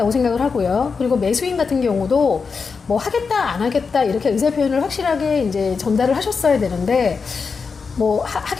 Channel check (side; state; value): right; quieter; 5.1 dB